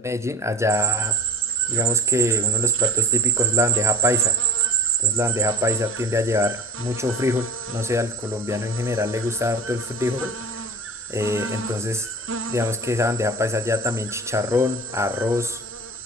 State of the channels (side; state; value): both; normal; correlation 0.34